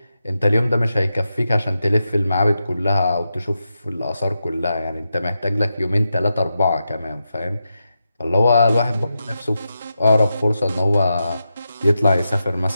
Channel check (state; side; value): inverted; both; correlation -0.88